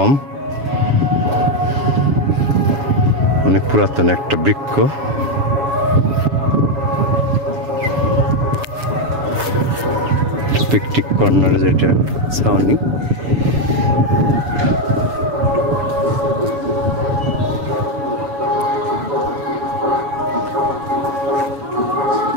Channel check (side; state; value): left; late; 7.1 ms